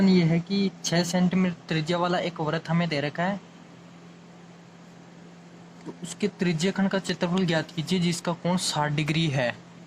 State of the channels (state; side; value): identical; both; correlation 1.00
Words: ये है कि 6 सेंटीमीटर त्रिज्या वाला एक वृत्त हमें दे रखा है, तो उसके त्रिज्यखंड का क्षेत्रफल ज्ञात कीजिए जिसका कोण 60 डिग्री है।